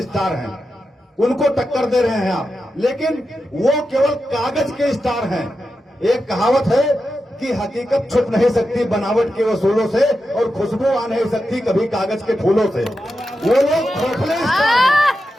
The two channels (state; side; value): normal; both; correlation 0.89